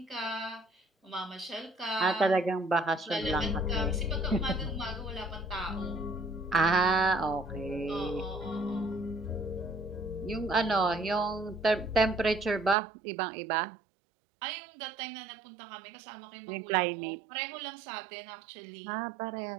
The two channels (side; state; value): left; drops out; at 12.8 s